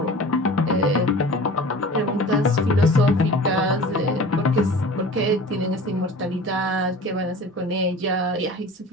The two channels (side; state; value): both; normal; correlation 0.40